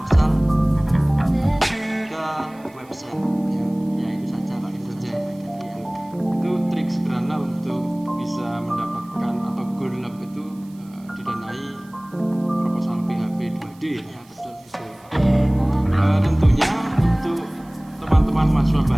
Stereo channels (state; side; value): noise; right; hiss, 28 dB below the sound